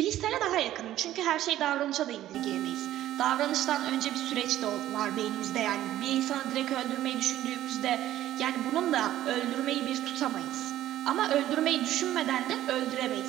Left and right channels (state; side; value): quieter; left; 13.4 dB